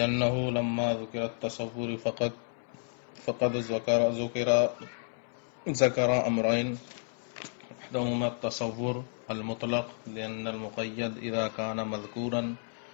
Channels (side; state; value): right; silent; 57 dB below the other